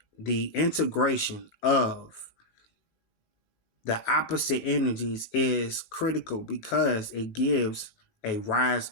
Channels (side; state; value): right; late; 19 ms